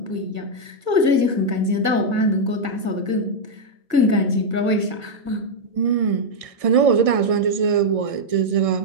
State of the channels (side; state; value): left; late; 1.6 ms